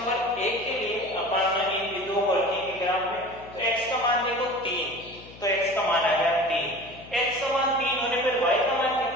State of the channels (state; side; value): noise; left; hum, 19 dB below the sound